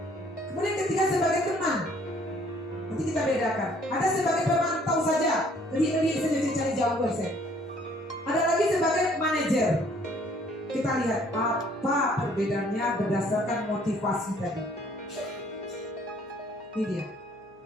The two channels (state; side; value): normal; both; correlation 0.60